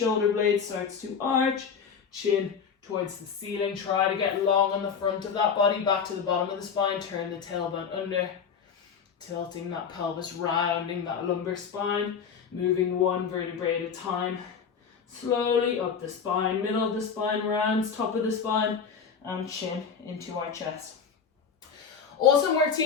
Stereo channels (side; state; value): right; quieter; 6.5 dB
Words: blades starts to arch. Chin towards the ceiling. Try to get long on the front of that body. Back to the bottom of the spine. Turn the tailbone under. Tilting that pelvis, rounding that lumbar spine, moving one vertebrae at a time. Slowly up the spine, middle of the spine, rounds, top of the spine, and chin into our chest. Awesome work,